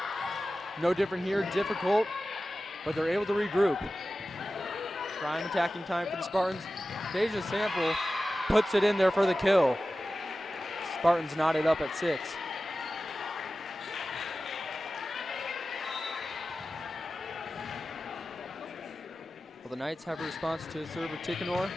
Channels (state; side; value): normal; both; correlation 0.95